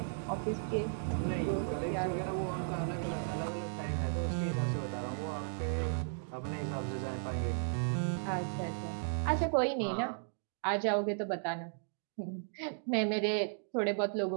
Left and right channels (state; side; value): silent; left; digital silence